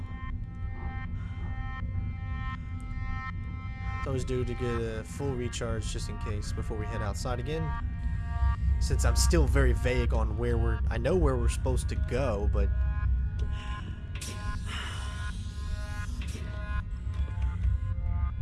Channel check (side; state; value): both; identical; correlation 1.00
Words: It's always due to get a full recharge just in case before we head outside again. Since I'm still very vague on where I know where we're supposed to go, but